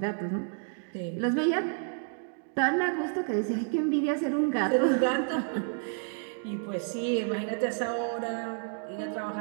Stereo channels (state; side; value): silent; left; 58 dB below the other